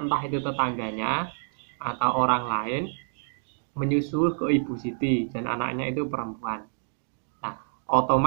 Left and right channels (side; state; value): left; silent; digital silence